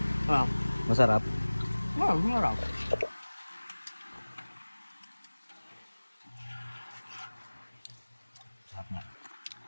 Ah, masarap. marap. Sarap nga.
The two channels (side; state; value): both; inverted; correlation -1.00